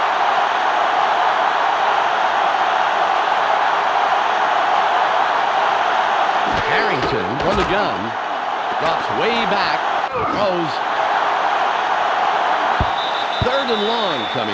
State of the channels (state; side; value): identical; both; correlation 1.00